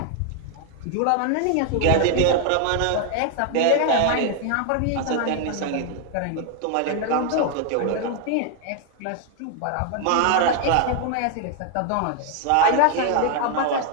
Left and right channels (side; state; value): both; different; correlation 0.00